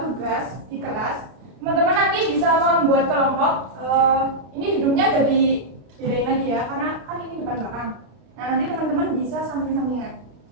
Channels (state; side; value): late; left; 32 ms